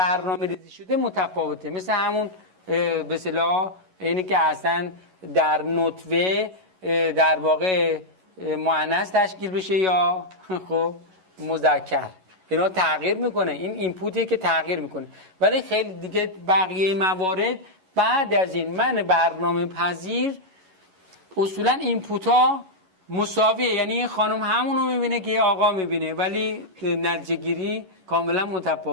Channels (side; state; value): left; late; 11 ms